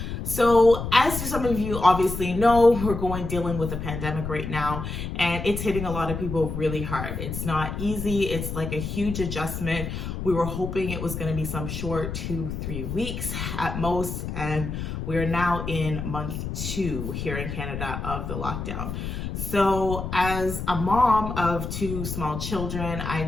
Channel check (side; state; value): left; noise; rumble, 5 dB below the sound